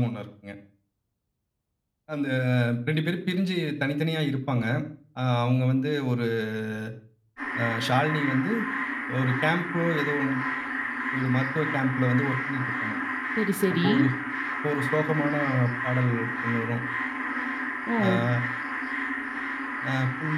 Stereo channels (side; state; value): both; identical; correlation 1.00